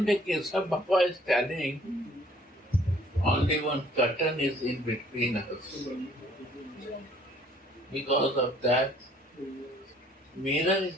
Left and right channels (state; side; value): normal; both; correlation 0.59